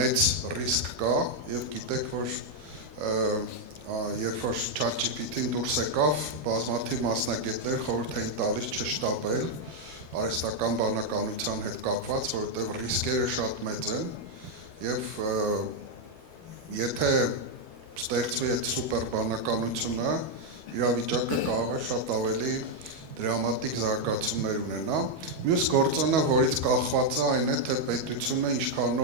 ռիսկ կա եւ գիտեք, որ երբ որ ChatGPT-ն դուրս եկավ, բազմաթիվ մասնագետներ խորհուրդ էին տալիս չշտապել արհեստական բանականության հետ կապված, որովհետև ռիսկերը շատ մեծ են եւ եթե ստեղծվի այդ սուպեր բանականությունը, իրավիճակը կարող է շատ ավելի դրամատիկ զարգացումներ ունենա։ Մյուս գործոնը, որից կախված է, այն է, թե պետությունը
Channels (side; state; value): left; late; 12 ms